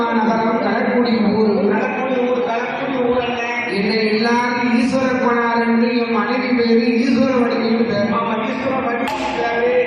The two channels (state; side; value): identical; both; correlation 1.00